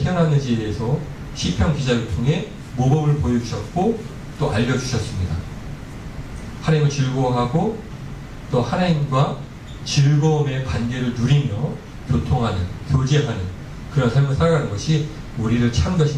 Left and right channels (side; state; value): both; identical; correlation 1.00